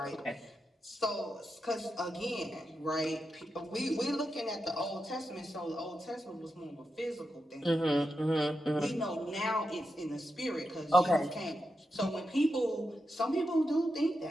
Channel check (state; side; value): normal; both; correlation 0.87